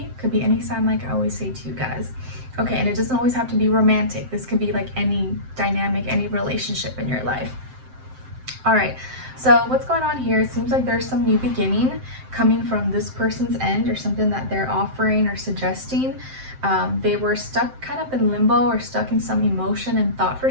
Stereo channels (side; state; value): left; late; 7.7 ms